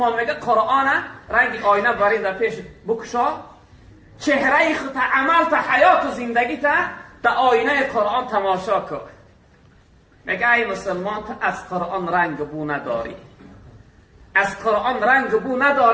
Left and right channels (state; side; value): identical; both; correlation 1.00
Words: میگه قرآن رنگ آینه برای در پیش بکشا، چهره خود عمل تا حیات و زندگی تا در آینه قرآن تماشا کن. میگه ای مسلمان تا از قرآن رنگ بو نداری، از قرآن رنگ بو